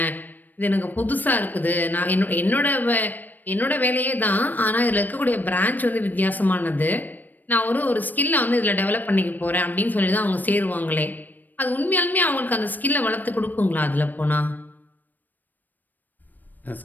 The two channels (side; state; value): right; late; 0.087 ms